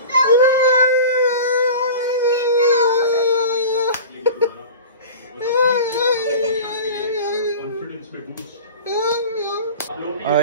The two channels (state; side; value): inverted; both; correlation -0.36